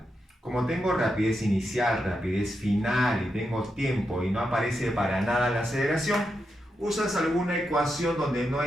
Como tengo rapidez inicial, rapidez final y tengo tiempo y no aparece para nada la aceleración, usas alguna ecuación donde no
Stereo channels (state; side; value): normal; both; correlation 0.85